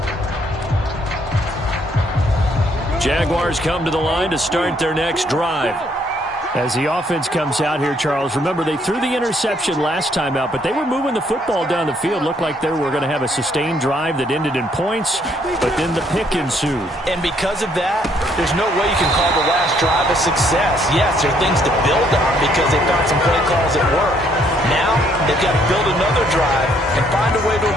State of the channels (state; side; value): normal; both; correlation 0.68